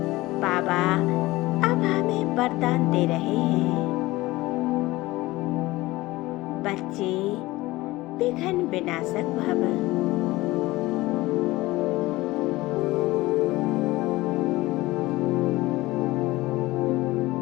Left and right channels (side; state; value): right; quieter; 19.3 dB